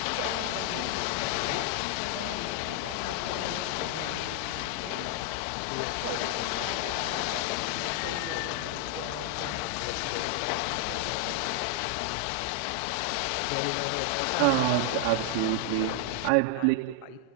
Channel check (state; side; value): different; both; correlation 0.00